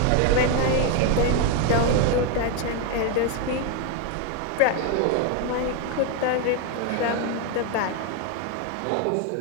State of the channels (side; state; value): both; different; correlation 0.01